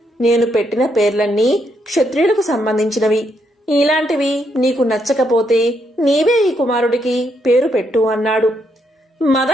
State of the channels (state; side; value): normal; both; correlation 0.77